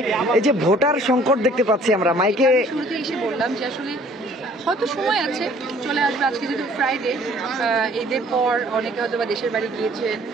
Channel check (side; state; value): both; normal; correlation 0.55